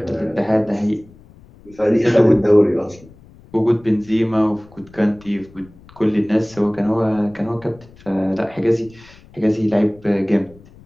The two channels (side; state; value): left; noise; rumble, 24 dB below the sound